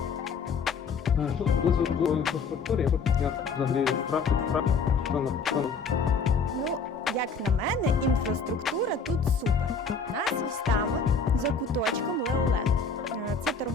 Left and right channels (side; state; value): right; quieter; 4.9 dB